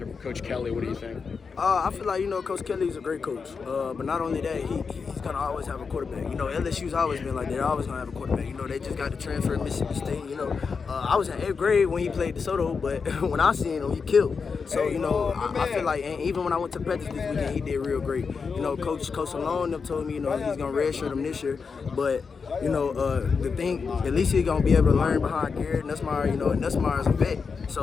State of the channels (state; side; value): quieter; right; 5.3 dB